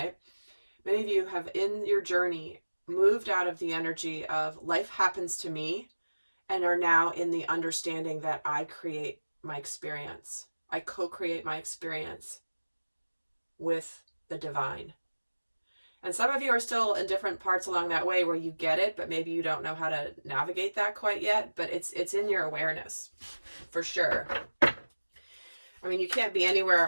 Many of you have, in your journey, moved out of the energy of life happens to me and are now in the understanding that I create my experience. I co-create my experience with the divine. And some of you are still in different parts along that way where you get it, but maybe you don't know how to navigate that quite yet, but it's in your awareness for sure. I mean, you can't be anywhere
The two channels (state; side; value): inverted; both; correlation -1.00